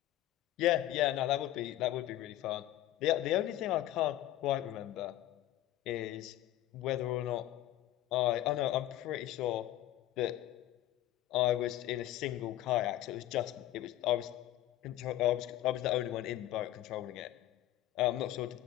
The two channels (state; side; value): quieter; right; 14.1 dB